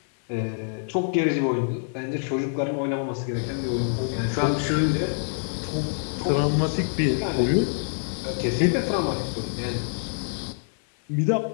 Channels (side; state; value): right; silent; digital silence